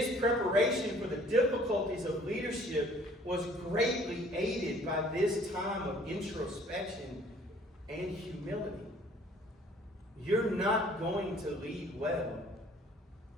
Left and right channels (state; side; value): normal; both; correlation 0.56